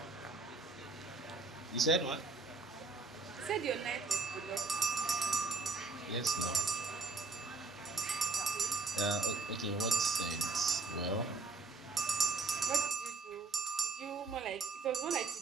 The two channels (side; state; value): left; quieter; 3.8 dB